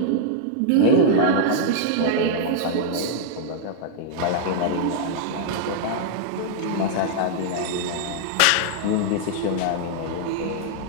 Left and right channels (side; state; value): both; different; correlation -0.01